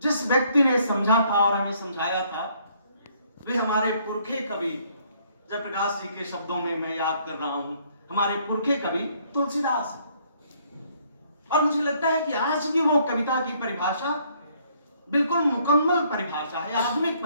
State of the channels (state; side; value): inverted; both; correlation -0.66